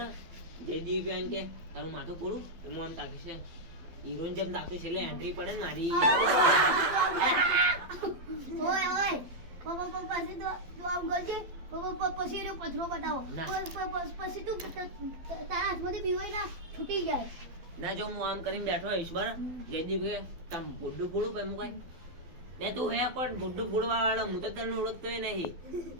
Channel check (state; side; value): late; left; 12 ms